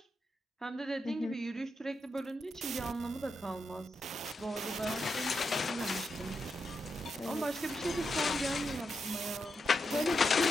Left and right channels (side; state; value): both; normal; correlation 0.85